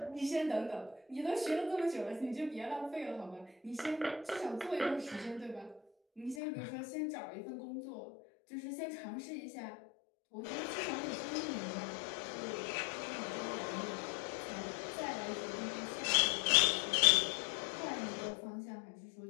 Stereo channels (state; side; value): drops out; right; at 6.4 s